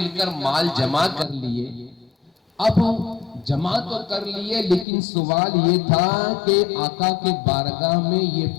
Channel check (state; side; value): drops out; right; at 4.9 s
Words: کر مال جمع کر لیے اب جمع تو کر لیے لیکن سوال یہ تھا کہ آقا کے بارگاہ میں یہ